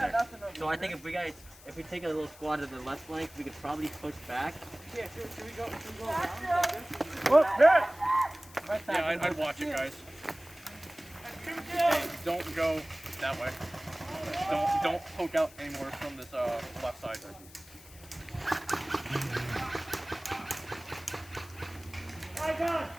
So I think if we take a little squad to the left flank, we could probably push back. Yeah, should we go around? Whoop, yeah. Yeah, I'd watch it, guys. Hey, don't go that way. Don't poke out anymore from this left side. My God,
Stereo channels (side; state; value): left; noise; hiss, 21 dB below the sound